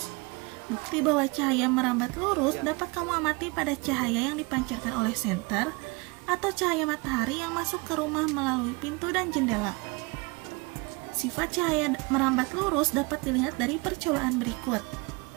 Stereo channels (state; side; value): quieter; left; 27.4 dB